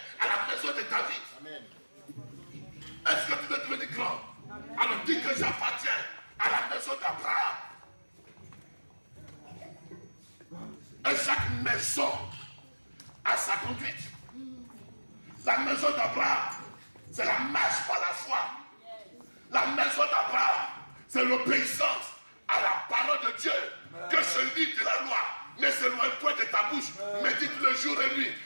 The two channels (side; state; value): both; inverted; correlation -1.00